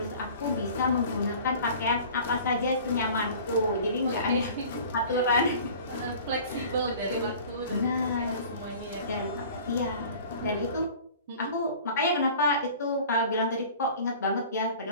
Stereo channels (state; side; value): inverted; both; correlation -0.44